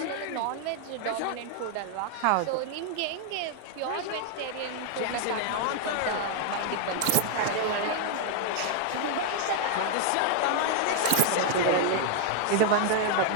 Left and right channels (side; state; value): both; different; correlation 0.00